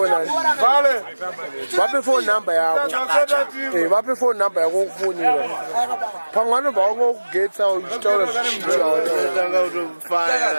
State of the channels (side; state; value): both; inverted; correlation -1.00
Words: Vale. Vape phone number yako. Vape phone number yako kufonira. Pangano baungokugetsa uchitaura Tanga